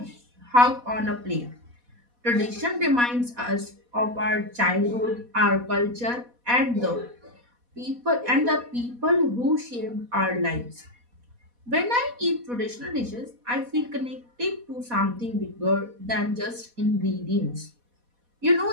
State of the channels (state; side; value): late; left; 4.1 ms